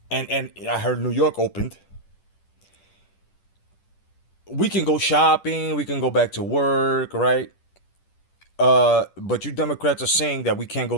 and I heard New York opened. We can go shopping, we can go back to work, right? But you Democrats are saying that we can't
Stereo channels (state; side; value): late; right; 10 ms